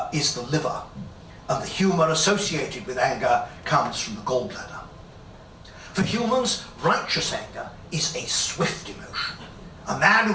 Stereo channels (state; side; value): identical; both; correlation 1.00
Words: liver. and the humour associated with anger comes from the gallbladder. For humans, righteous anger is a swift emotion. A man